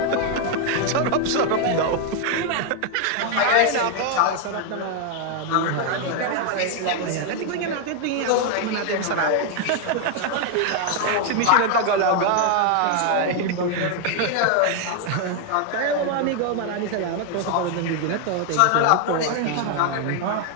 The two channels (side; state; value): both; different; correlation 0.00